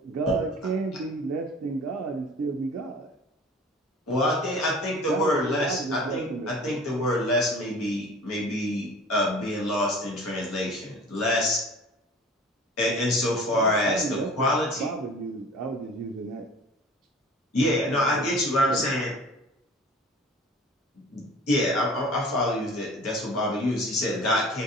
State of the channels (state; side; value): normal; both; correlation 0.44